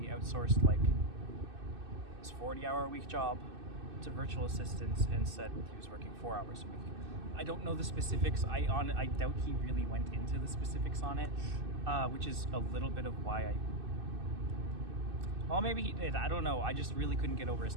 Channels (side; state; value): left; late; 2.6 ms